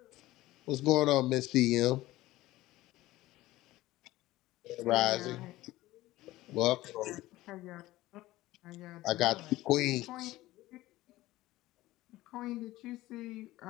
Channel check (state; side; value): quieter; right; 17.2 dB